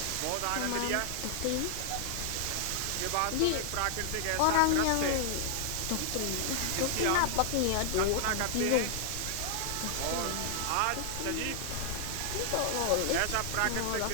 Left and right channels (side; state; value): both; different; correlation -0.01